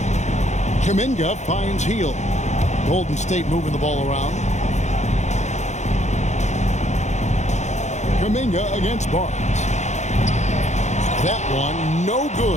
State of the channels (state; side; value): late; right; 0.34 ms